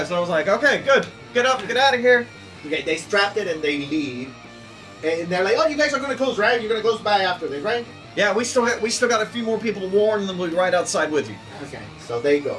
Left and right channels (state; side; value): identical; both; correlation 1.00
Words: So I was like, okay, good. Get up, get out of here. Okay, they strapped it and they leave. And they're like, oh, you guys are gonna close, right? You're gonna close by after this, right? Yeah, we still got a few more people to warn, and then we'll be right outside with you. Okay, so they go.